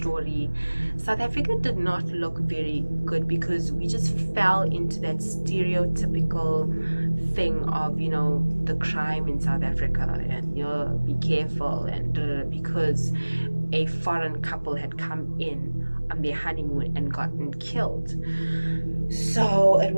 South Africa did not look very good, because we just fell into that stereotypical thing of, you know, the crime in South Africa, and, you know, be careful, and because a foreign couple had come in on their honeymoon and gotten killed. So it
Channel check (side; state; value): both; inverted; correlation -1.00